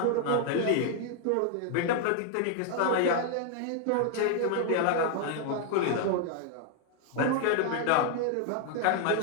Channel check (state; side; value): different; both; correlation 0.00